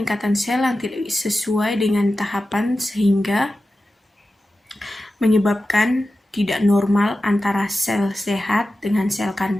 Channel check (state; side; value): normal; both; correlation 0.93